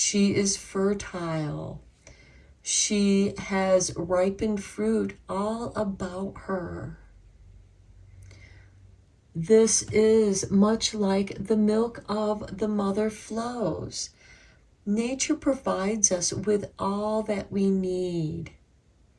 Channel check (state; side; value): identical; both; correlation 1.00